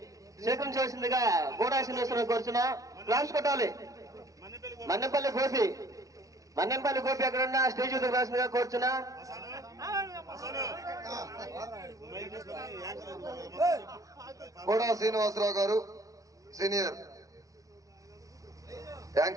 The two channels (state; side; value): late; left; 0.17 ms